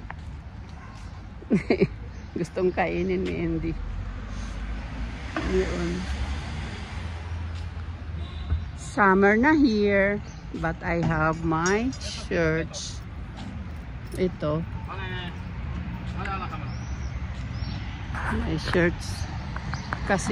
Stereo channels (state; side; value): identical; both; correlation 1.00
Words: Gustong kainin ni Andy. Yun. Summer na here, but I have my shirts. Ito. My shirts.